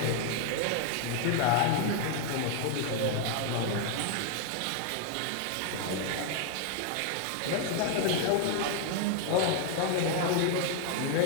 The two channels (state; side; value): different; both; correlation 0.00